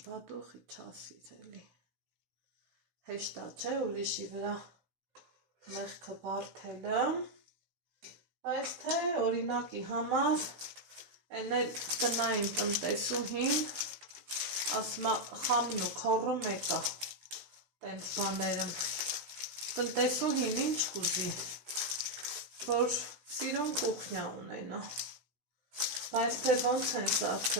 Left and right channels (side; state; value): left; late; 16 ms